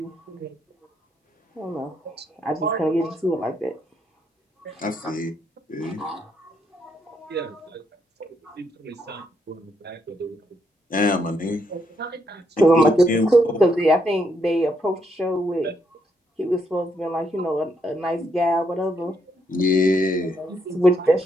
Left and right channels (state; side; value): normal; both; correlation 0.76